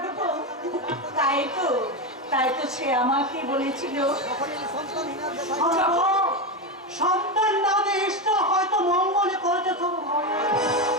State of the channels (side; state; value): both; normal; correlation 0.13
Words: তাই তো সে আমাকে বলেছিল, সন্তান না দিয়ে ঈশ্বর হয়তো মঙ্গলে করেছে শুধু।